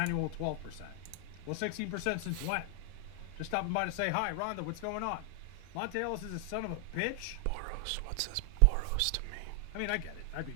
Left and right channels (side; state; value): both; different; correlation 0.00